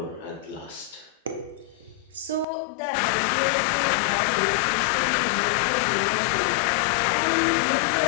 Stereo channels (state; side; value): drops out; right; at 2.5 s